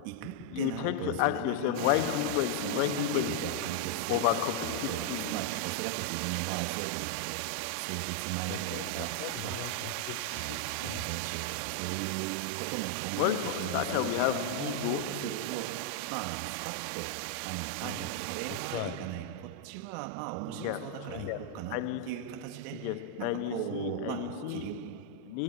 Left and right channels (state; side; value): different; both; correlation 0.00